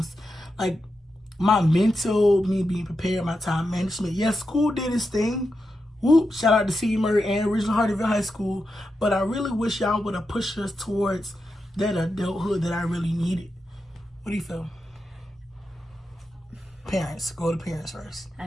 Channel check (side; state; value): both; normal; correlation 0.88